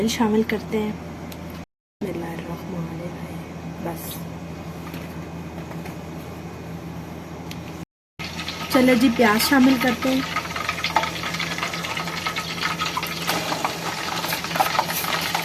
शामिल करते हैं। बिस्मिल्लाहिर्रहमानिर्रहीम। बस चलें जी, प्याज शामिल करते हैं।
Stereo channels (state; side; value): identical; both; correlation 1.00